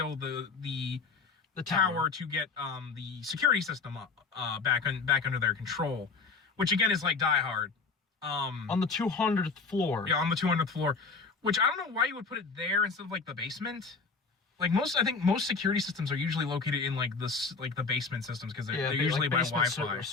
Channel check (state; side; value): quieter; right; 4.6 dB